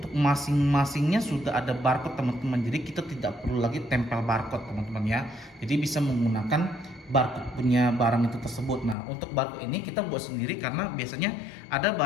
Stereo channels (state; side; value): drops out; right; at 9.0 s